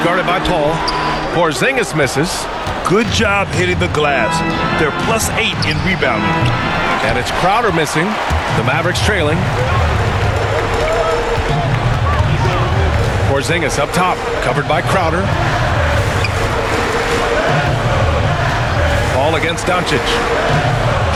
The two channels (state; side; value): identical; both; correlation 1.00